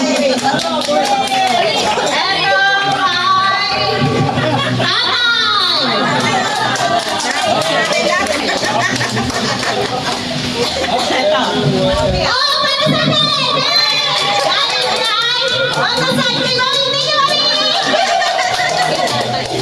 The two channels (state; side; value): identical; both; correlation 1.00